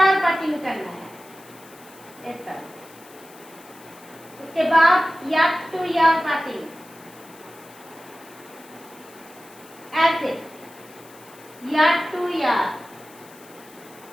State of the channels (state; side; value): noise; left; hiss, 23 dB below the sound